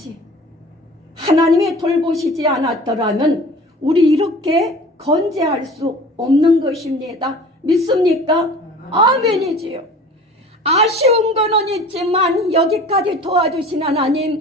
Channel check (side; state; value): both; normal; correlation 0.43